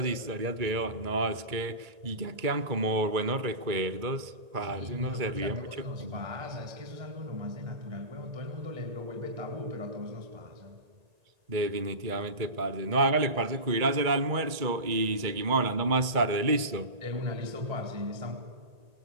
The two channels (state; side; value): late; left; 2.3 ms